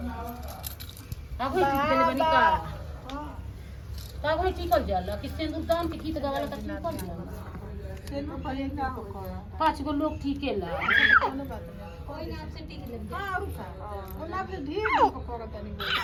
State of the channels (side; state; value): both; identical; correlation 1.00